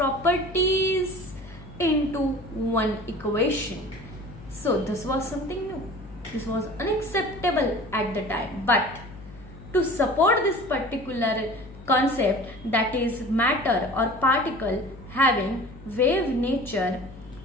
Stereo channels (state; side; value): noise; left; hum, 17 dB below the sound